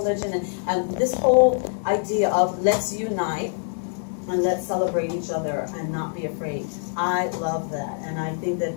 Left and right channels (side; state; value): right; silent; 62 dB below the other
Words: and this whole idea of let's unite and let's celebrate each other and not be afraid. I love that, and I think that